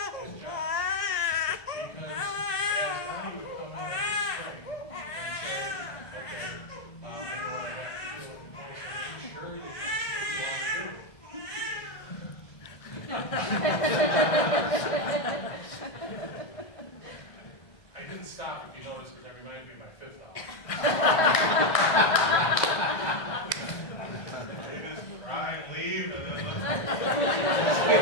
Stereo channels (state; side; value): late; right; 1.6 ms